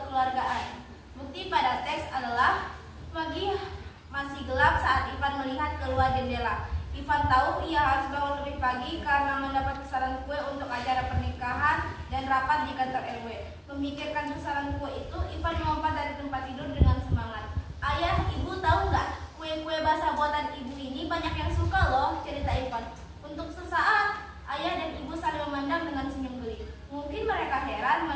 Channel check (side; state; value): both; identical; correlation 1.00